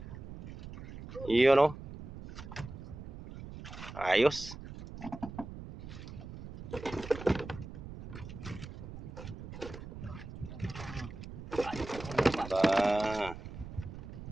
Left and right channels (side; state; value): right; noise; rumble, 11 dB below the sound